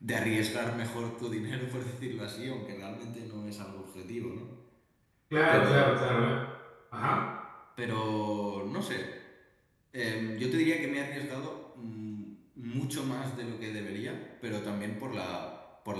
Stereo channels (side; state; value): both; identical; correlation 1.00